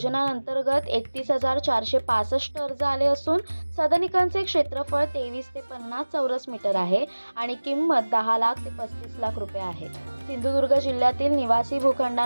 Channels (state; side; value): inverted; both; correlation -1.00